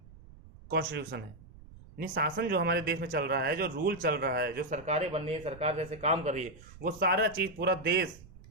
कॉन्स्टिट्यूशन है। यानी शासन जो हमारे देश में चल रहा है, जो रूल चल रहा है, जो सरकारें बन रही है, सरकार जैसे काम कर रही है, वो सारा चीज, पूरा देश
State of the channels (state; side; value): noise; right; rumble, 20 dB below the sound